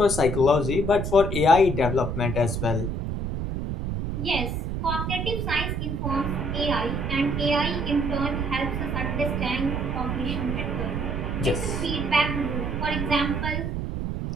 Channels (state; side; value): noise; right; rumble, 2 dB below the sound